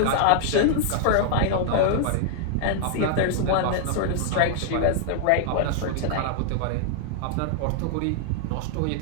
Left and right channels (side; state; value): both; different; correlation 0.00